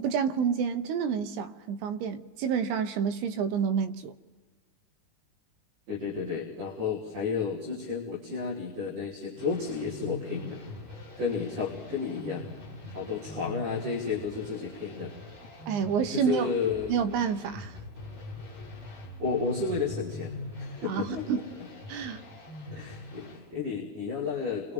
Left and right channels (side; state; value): left; late; 20 ms